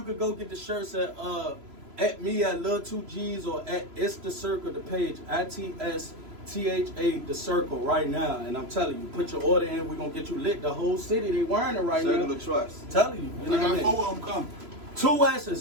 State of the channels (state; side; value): late; left; 3.0 ms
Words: can go get the shirts at me at Lil 2G's or at It's the Circle, the page ITSTHA the Circle right now. And I'm telling you, put your order in. We're gonna get you lit. The whole city they wearing it right Circle now. of trust. Telling you, you know I what I got mean? 4 of them coming. 2